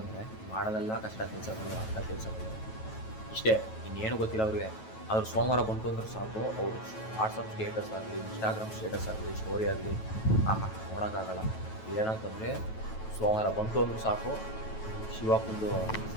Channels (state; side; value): late; right; 9.2 ms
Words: ಮಾಡೋದೆಲ್ಲ ಕಷ್ಟ ಕೆಲಸಗಳು, ಅಂಥ ಕೆಲಸಗಳು ಇಷ್ಟೇ, ಇನ್ನೇನು ಗೊತ್ತಿಲ್ಲ ಅವ್ರಿಗೆ. ಆದ್ರೆ ಸೋಮವಾರ ಬಂತು ಅಂದ್ರೆ ಸಾಕು, ಅವರು ವಾಟ್ಸಪ್ ಸ್ಟೇಟಸ್ ಆಗಲಿ, ಇನ್ಸ್ಟಾಗ್ರಾಮ್ ಸ್ಟೇಟಸ್ ಆಗಲಿ, ಸ್ಟೋರಿ ಆಗಲಿ ನೋಡೋಕ್ಕಾಗಲ್ಲ. ಏನಂತಂದರೆ ಸೋಮವಾರ ಬಂತು ಅಂದ್ರೆ ಸಾಕು, ಶಿವಪ್ಪಂದು